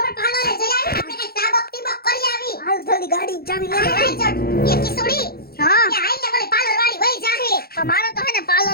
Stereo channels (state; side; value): late; right; 0.44 ms